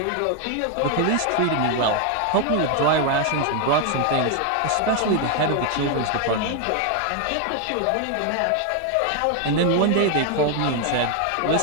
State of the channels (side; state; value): both; different; correlation 0.01